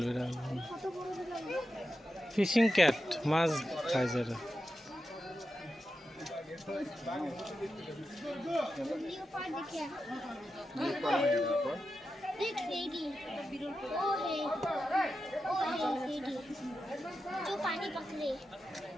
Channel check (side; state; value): both; normal; correlation 0.90